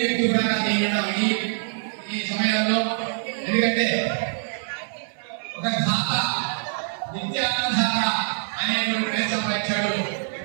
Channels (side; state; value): left; silent; 62 dB below the other